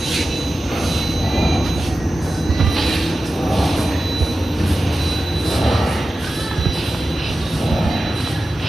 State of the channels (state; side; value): normal; both; correlation 0.94